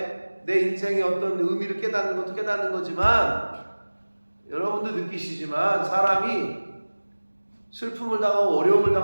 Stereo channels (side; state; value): both; inverted; correlation -1.00